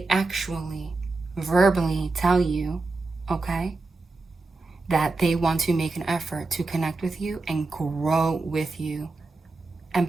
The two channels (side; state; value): left; quieter; 3.5 dB